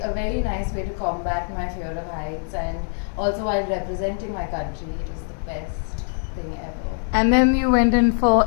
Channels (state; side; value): silent; right; 63 dB below the other